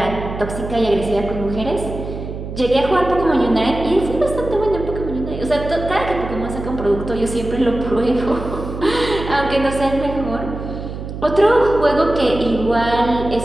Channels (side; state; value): right; noise; hum, 8 dB below the sound